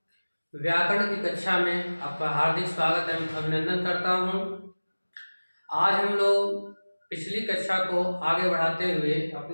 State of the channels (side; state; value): both; inverted; correlation -1.00